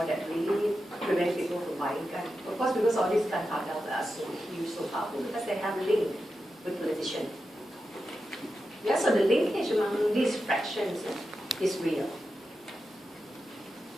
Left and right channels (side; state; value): both; normal; correlation 0.90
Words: that really prevents people from buying guns? Of course, because all these gun cartels are so huge, so powerful, because they have a link with politicians. Yeah, so the linkage among these fractions is real.